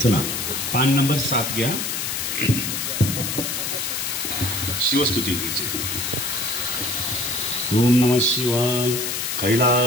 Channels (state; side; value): noise; left; hiss, 2 dB below the sound